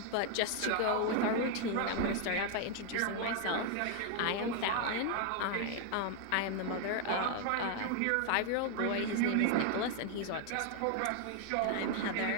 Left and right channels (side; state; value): both; different; correlation 0.00